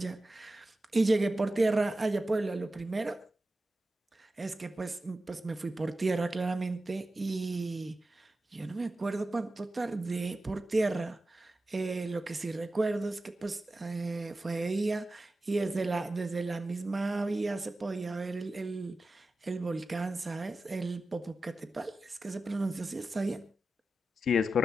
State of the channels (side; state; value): both; normal; correlation 0.93